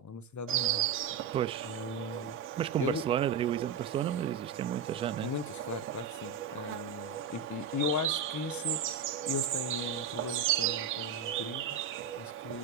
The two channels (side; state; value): left; quieter; 5.8 dB